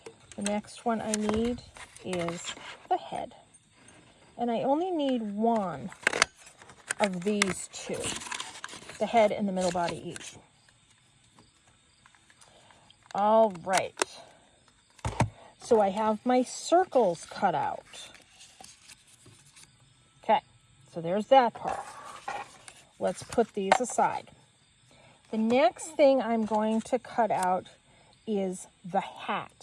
The next one I need is the head. And I only need one of these 2, the head and the middle body each. All right. So I have my circles cut out. Okay, so there's that part. Let's put these aside. The next thing I'm going to cut out is the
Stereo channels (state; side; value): identical; both; correlation 1.00